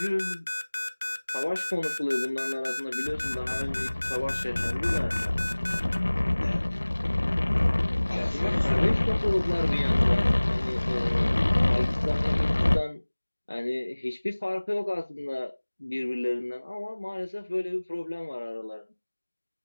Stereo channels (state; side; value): inverted; both; correlation -1.00